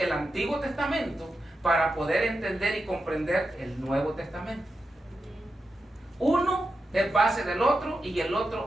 Antiguo Testamento para poder entender y comprender el Nuevo Testamento. Uno es base del otro y el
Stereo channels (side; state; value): both; normal; correlation 0.89